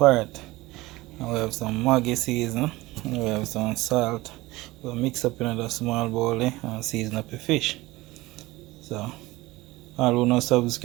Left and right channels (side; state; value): left; quieter; 19.7 dB